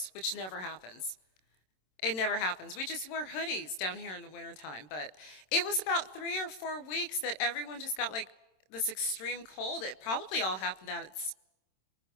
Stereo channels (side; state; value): right; late; 27 ms